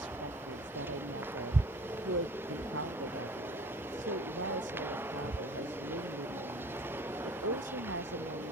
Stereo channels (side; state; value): both; normal; correlation 0.47